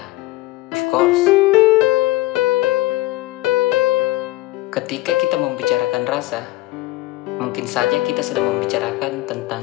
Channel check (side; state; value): right; quieter; 18.3 dB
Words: Of course. Ketika kita membicarakan rasa, mungkin saja kita sedang membicarakan